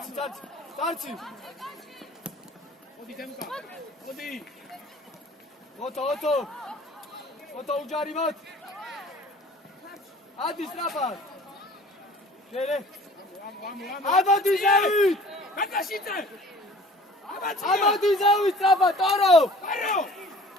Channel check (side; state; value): both; normal; correlation 0.48